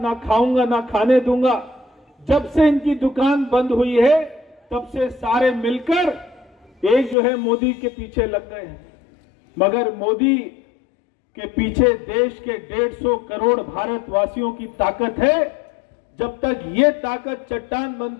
खाऊंगा ना खाने दूंगा। जब से इनकी दुकान बंद हुई है तब से सारे मिलकर एक जो है मोदी के पीछे लग गए हैं। मगर मोदी के पीछे देश के 150 करोड़ भारतवासियों की ताकत है। जब तक ये ताकत चट्टान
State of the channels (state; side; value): drops out; right; at 7.2 s